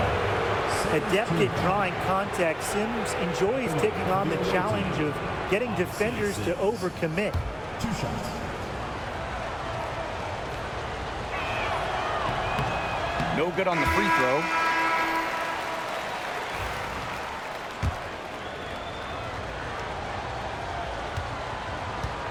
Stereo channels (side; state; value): both; identical; correlation 1.00